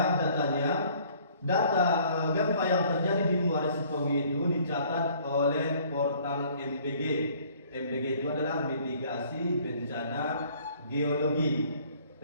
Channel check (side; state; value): both; inverted; correlation -0.57